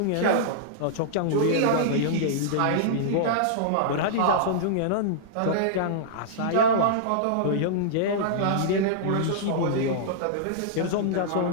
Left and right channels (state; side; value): different; both; correlation -0.02